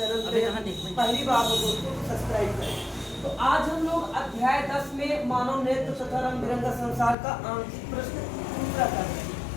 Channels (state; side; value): drops out; right; at 7.2 s